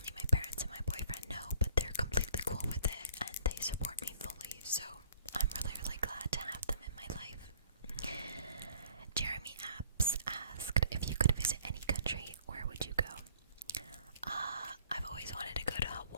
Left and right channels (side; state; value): both; inverted; correlation -0.57